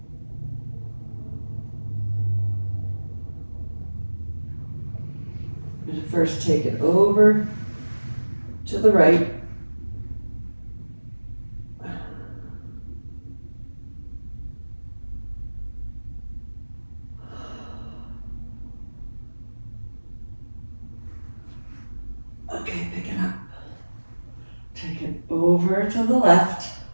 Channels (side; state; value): both; inverted; correlation -1.00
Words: I'm going to first take it over to the right. Okay, pick it up. Take it over to the left.